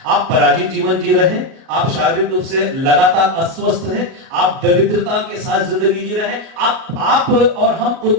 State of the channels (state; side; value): late; left; 37 ms